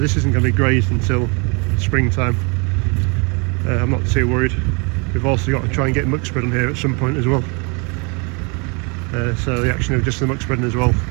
isn't going to be grazed until springtime. I'm not too worried. We've also got to try and get muck spread on here at some point as well. So the action of just the muck spreading as well,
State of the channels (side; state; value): left; quieter; 32.4 dB